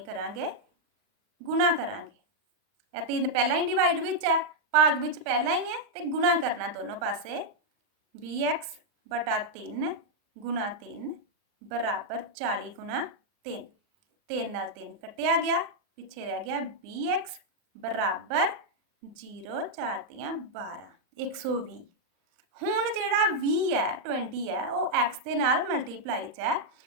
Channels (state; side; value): late; left; 39 ms